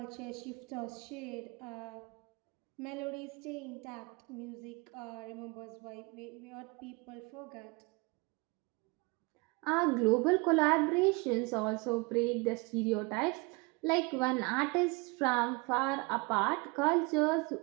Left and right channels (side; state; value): left; quieter; 28.1 dB